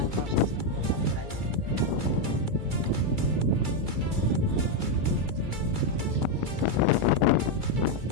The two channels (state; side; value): late; left; 2.3 ms